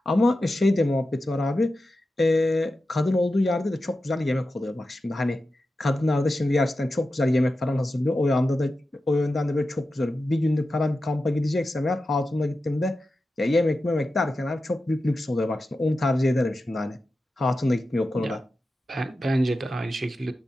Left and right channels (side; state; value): both; normal; correlation 0.92